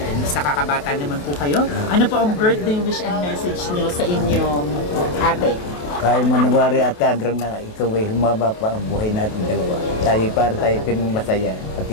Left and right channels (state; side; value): late; right; 28 ms